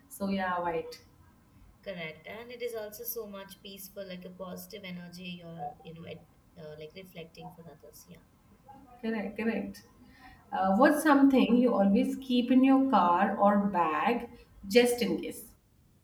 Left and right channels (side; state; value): both; identical; correlation 1.00